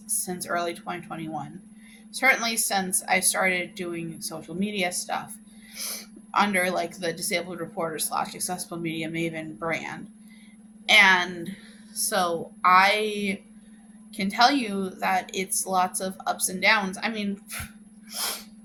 since early 2021. Certainly since I started doing social media stuff under like the Disabled Reporter / Accessible Media Maven brand. And so I can tell you that it's lots of ups and downs. I mean,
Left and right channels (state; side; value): identical; both; correlation 1.00